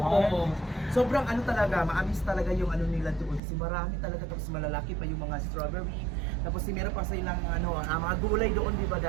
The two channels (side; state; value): left; drops out; at 3.4 s